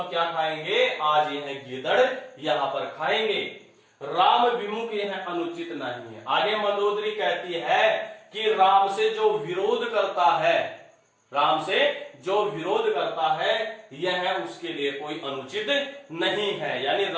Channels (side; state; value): both; identical; correlation 1.00